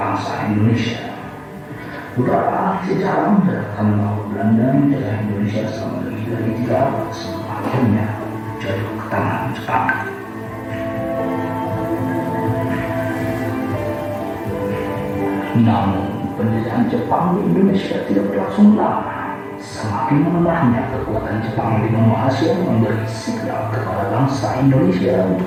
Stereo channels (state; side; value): identical; both; correlation 1.00